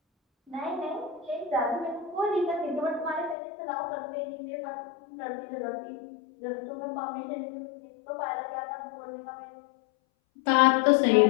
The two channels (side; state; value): right; drops out; at 3.4 s